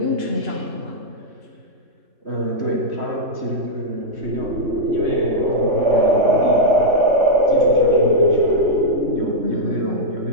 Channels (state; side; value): late; left; 3.1 ms